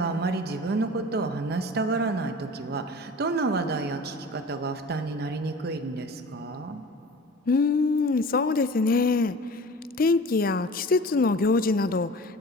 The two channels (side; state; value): both; normal; correlation 0.40